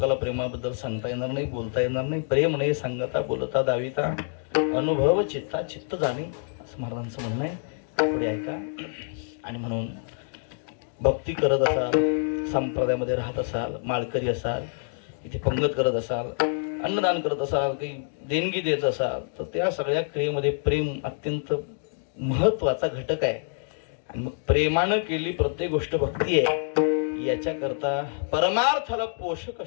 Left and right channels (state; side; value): silent; right; 60 dB below the other